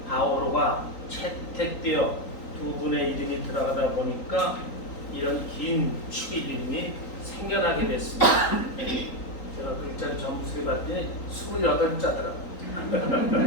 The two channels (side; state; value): right; late; 3.8 ms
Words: 바오로가 채택되어 두 분의 이름이 들어가다 보니까 이런 긴 축일 이름이 생겨나게 됐습니다. 제가 글자를 점수해 봤더니 28자더라고요.